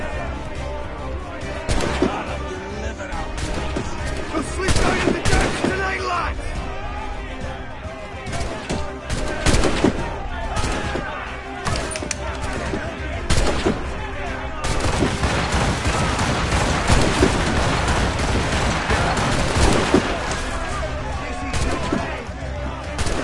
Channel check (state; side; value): identical; both; correlation 1.00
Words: The fleet's going in the deck!